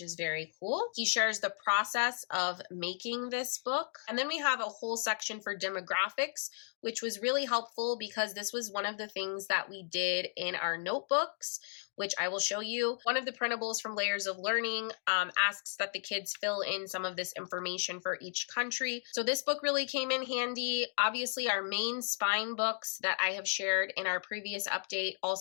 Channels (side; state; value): right; silent; digital silence